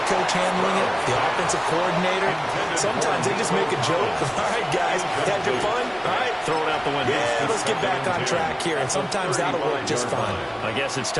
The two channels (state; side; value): identical; both; correlation 1.00